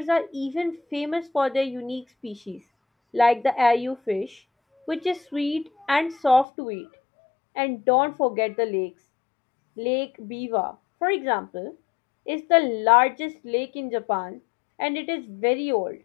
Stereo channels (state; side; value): drops out; right; at 6.5 s